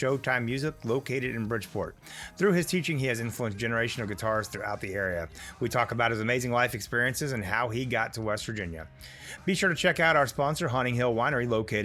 Music, located in Bridgeport. Through his teaching, he has influenced a generation of guitarists throughout the area. We talk about his amazing life experiences and how he got to West Virginia. Be sure to check out our sponsor, Haunting Hill Winery,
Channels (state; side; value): identical; both; correlation 1.00